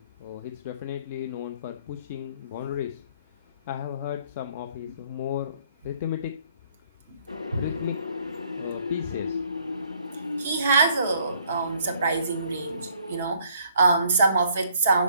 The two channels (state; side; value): inverted; both; correlation -0.64